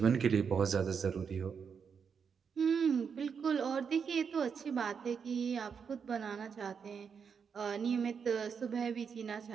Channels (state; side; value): quieter; left; 6.5 dB